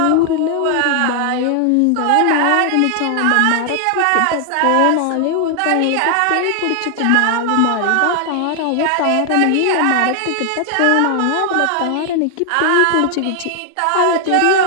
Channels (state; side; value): different; both; correlation 0.00